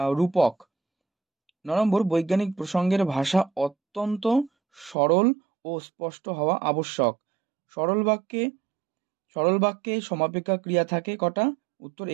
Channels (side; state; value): left; drops out; at 5.0 s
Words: রূপক। 9 নম্বর, বৈজ্ঞানিক প্রসঙ্গের ভাষা অত্যন্ত সরল ও স্পষ্ট হওয়া আবশ্যক। সরল বাক্যে সমাপিকা ক্রিয়া থাকে কটা? উত্তর